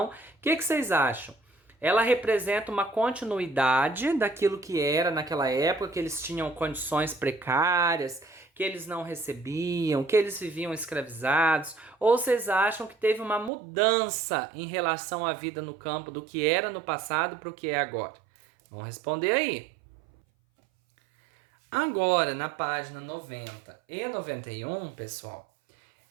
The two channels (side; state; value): left; drops out; at 13.5 s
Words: o que vocês acham? Ela representa uma continuidade daquilo que era naquela época, que eles tinham condições precárias, que eles não recebiam, que eles viviam escravizados? Ou vocês acham que teve uma mudança em relação à vida no campo do que era no passado para o que é agora? Vamos responder aí. Agora, na página 90 e 91, pessoal,